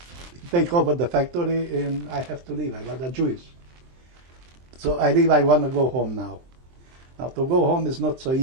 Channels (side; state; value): left; late; 23 ms